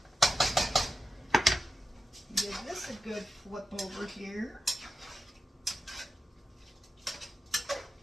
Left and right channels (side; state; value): both; normal; correlation 0.89